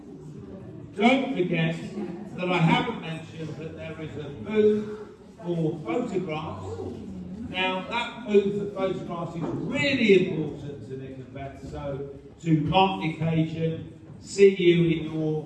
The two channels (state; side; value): identical; both; correlation 1.00